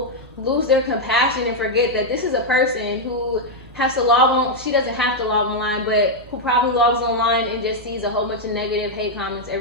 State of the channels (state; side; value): normal; both; correlation -0.01